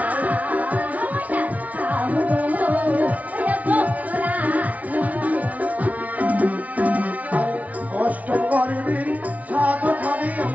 অষ্টম গর্বের সাত খাবি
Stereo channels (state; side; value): late; left; 0.070 ms